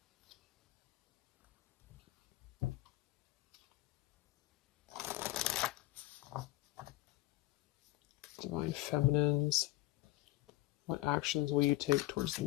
Divine Feminines. What actions will you take towards the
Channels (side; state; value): right; quieter; 17.4 dB